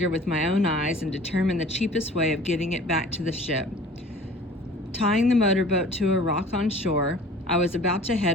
with my own eyes, and determine the cheapest way of getting it back to the ship. Tying the motorboat to a rock on shore, I was about to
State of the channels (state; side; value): normal; both; correlation 0.46